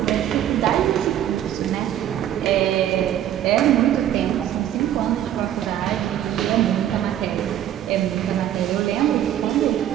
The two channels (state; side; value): quieter; left; 11.3 dB